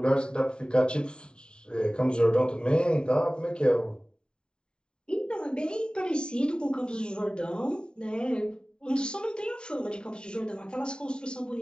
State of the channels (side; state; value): right; late; 0.049 ms